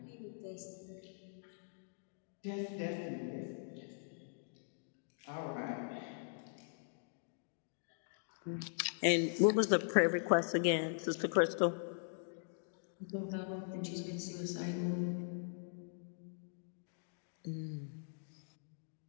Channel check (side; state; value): right; silent; digital silence